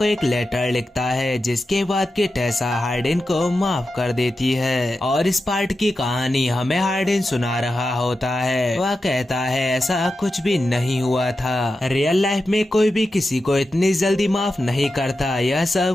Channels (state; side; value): normal; both; correlation 0.91